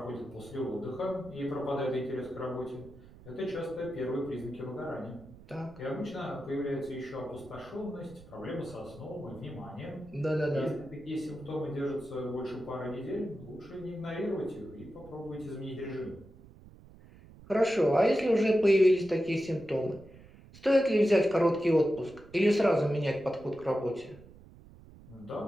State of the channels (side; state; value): right; noise; rumble, 21 dB below the sound